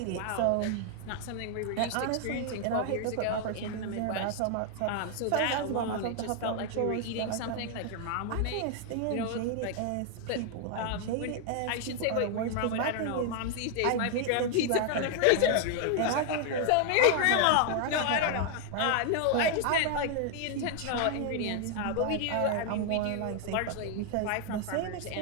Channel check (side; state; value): both; different; correlation 0.00